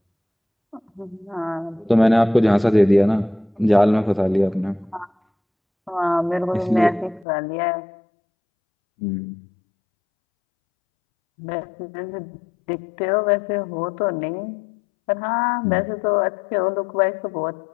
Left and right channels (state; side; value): drops out; right; at 7.2 s